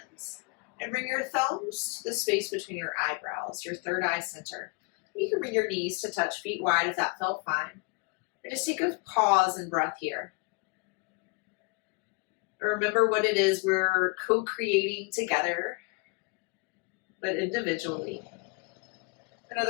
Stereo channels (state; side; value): quieter; right; 30.6 dB